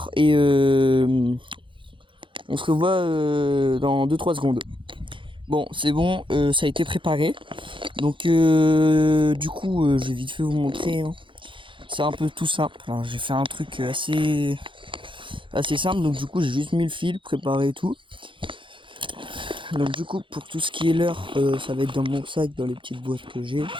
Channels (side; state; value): left; late; 0.24 ms